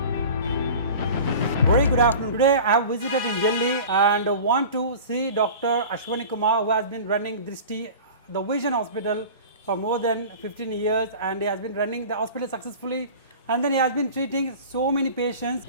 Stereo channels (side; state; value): both; inverted; correlation -0.38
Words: Very good afternoon. Today I have visited in Delhi and want to see Dr. Ashwani Kumar, who has been running Drishti, the Vision Hospital for more than 15 years, and he has been running the hospital successfully, and then he has been treating so many patients.